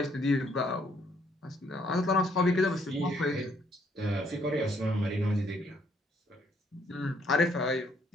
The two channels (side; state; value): both; normal; correlation 0.68